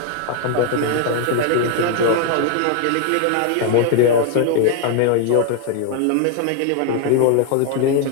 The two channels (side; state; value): both; different; correlation 0.01